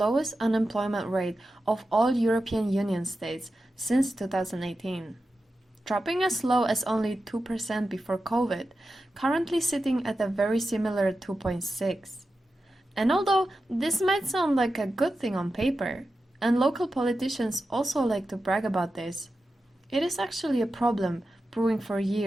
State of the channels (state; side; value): normal; both; correlation 0.91